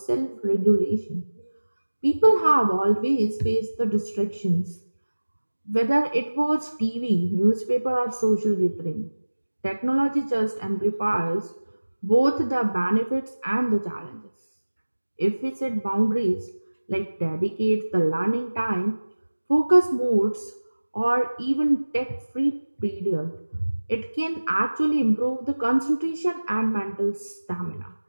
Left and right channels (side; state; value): both; inverted; correlation -1.00